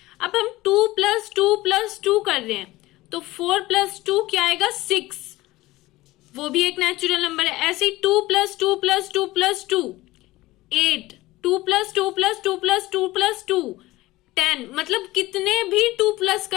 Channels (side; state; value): right; quieter; 18.3 dB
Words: अब हम 2 + 2 + 2 कर रहे हैं, तो 4 + 2 क्या आएगा 6, वो भी एक नेचुरल नंबर है। ऐसे ही 2 + 2 + 2 + 2 8, 2 + 2 + 2 + 2 + 2 10, मतलब कितने भी 2 प्लस